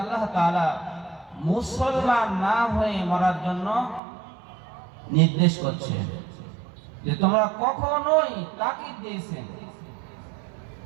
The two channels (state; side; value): drops out; left; at 4.0 s